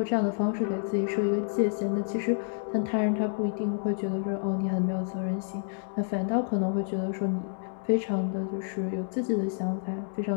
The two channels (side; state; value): right; silent; digital silence